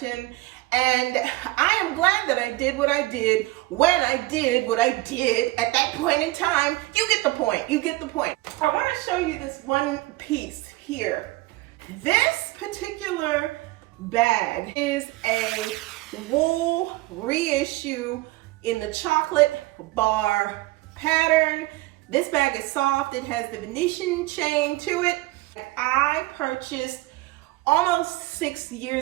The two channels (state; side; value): quieter; left; 19.8 dB